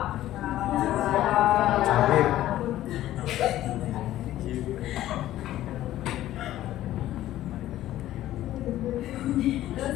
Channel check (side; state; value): right; quieter; 13.9 dB